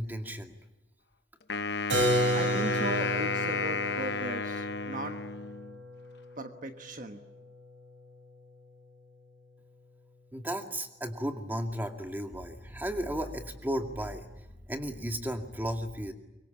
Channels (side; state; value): both; normal; correlation 0.40